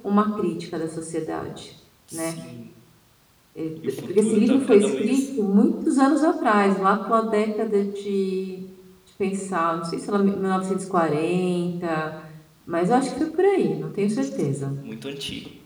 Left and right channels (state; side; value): identical; both; correlation 1.00